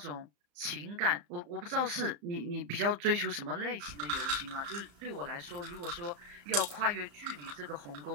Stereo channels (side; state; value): left; late; 35 ms